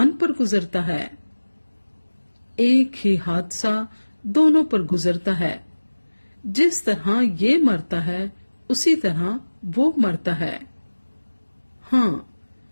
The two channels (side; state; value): both; inverted; correlation -1.00